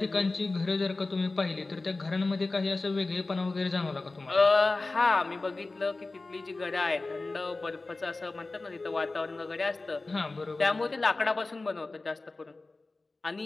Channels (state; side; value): quieter; right; 3.3 dB